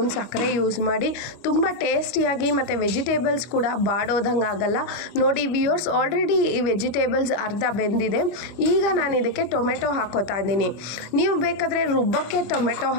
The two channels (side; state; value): right; late; 25 ms